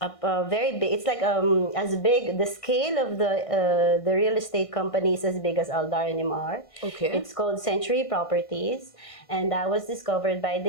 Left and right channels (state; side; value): late; right; 1.6 ms